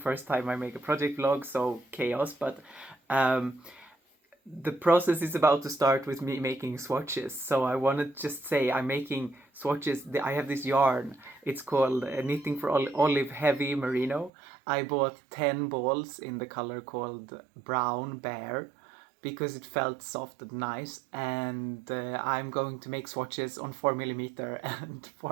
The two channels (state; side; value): drops out; left; at 14.3 s